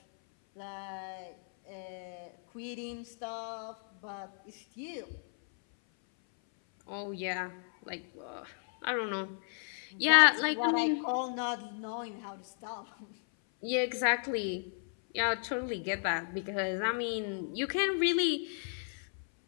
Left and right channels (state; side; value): silent; right; 55 dB below the other